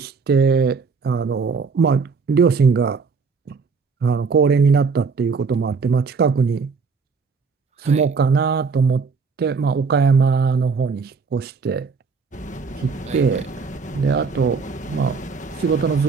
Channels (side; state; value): left; quieter; 5.0 dB